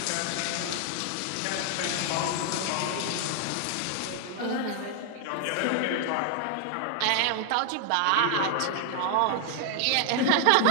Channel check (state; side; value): different; both; correlation 0.00